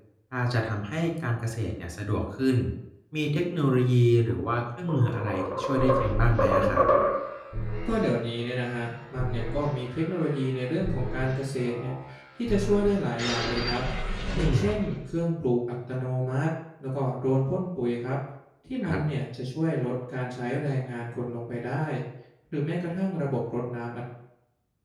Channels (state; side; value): identical; both; correlation 1.00